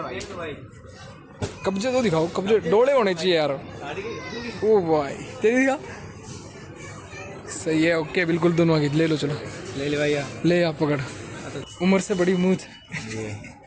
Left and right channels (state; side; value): identical; both; correlation 1.00